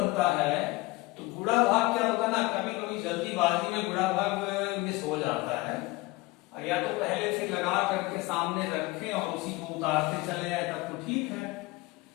है, तो गुणा भाग क्या होता है ना, कभी कभी जल्दीबाजी में गुणा भाग मिस हो जाता है, या तो पहले से लगा करके सामने रखें और उसी को उतारते चले जाए तब तो ठीक है,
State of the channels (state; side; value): quieter; right; 21.3 dB